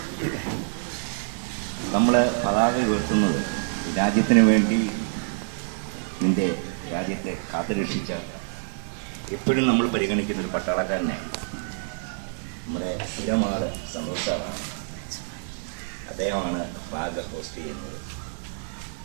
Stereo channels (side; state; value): left; silent; 61 dB below the other